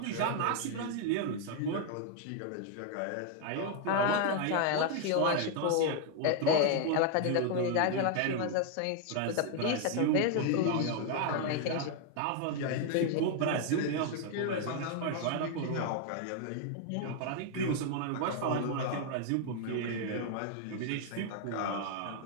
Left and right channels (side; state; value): both; different; correlation 0.00